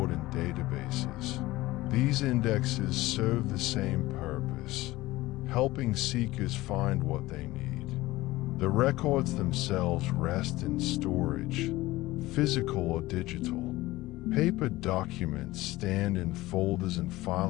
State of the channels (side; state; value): right; quieter; 18.4 dB